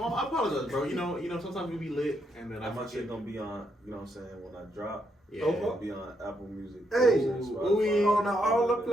I apologize, bro. You know, sometimes we be lit, and then how much it gonna be on, you know what I'm saying, when I drop? Yeah. It'll be on Apple Music. Hey, on all the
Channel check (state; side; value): normal; both; correlation 0.78